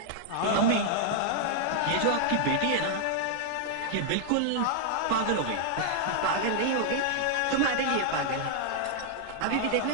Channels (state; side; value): different; both; correlation -0.01